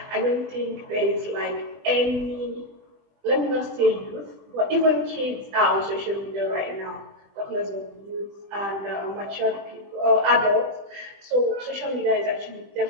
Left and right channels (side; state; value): left; late; 20 ms